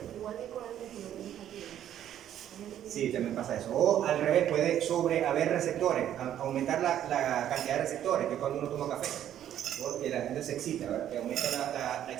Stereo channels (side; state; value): left; quieter; 10.9 dB